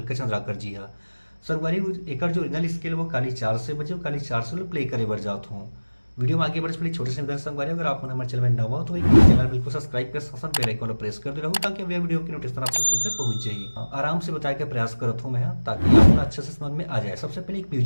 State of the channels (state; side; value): inverted; both; correlation -1.00